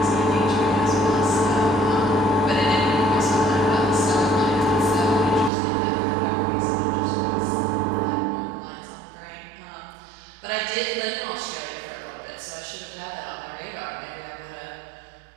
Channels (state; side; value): drops out; left; at 5.5 s